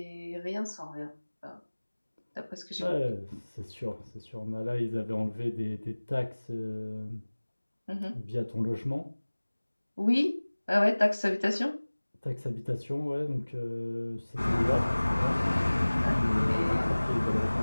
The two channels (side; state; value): both; inverted; correlation -1.00